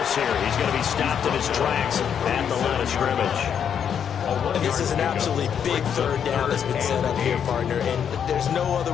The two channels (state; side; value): quieter; right; 8.1 dB